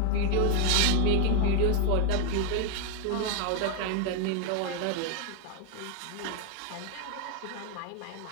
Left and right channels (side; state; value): both; different; correlation 0.01